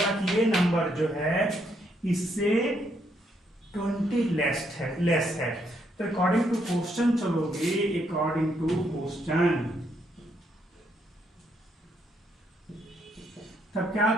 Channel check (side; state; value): both; normal; correlation 0.74